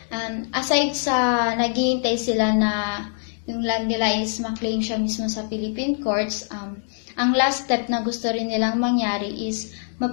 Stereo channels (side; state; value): right; silent; 63 dB below the other